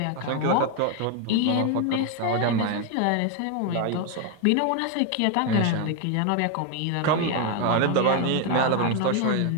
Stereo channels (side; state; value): both; different; correlation 0.01